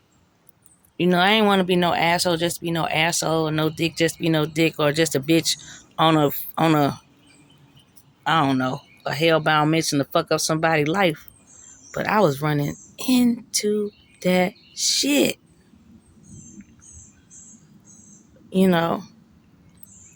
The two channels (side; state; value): both; identical; correlation 1.00